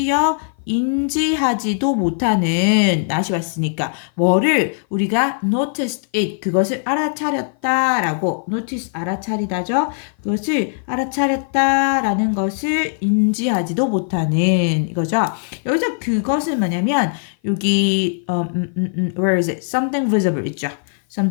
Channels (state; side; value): silent; right; 56 dB below the other